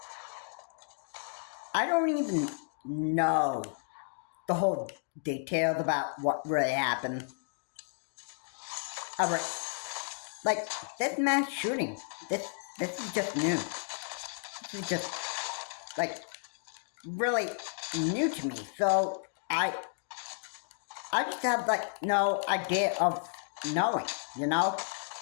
I don't even know the whole details about what really happened. Like, this mass shooting, this is just new. This is just, like, really new to me. So, I just have, like, no idea of knowing,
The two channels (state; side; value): silent; right; digital silence